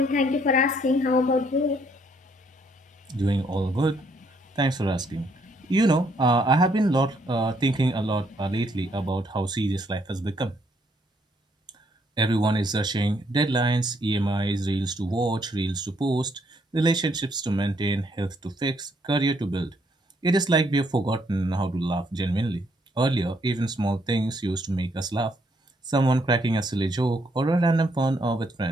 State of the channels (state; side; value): normal; both; correlation 0.70